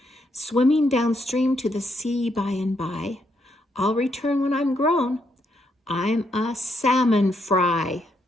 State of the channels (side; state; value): both; normal; correlation 0.76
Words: Swimming downstream to the sea by and by. I'll return when I'm grown. I'm a salmon fry.